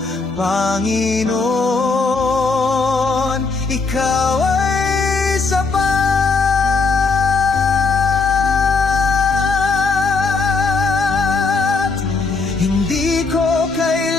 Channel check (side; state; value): right; quieter; 4.3 dB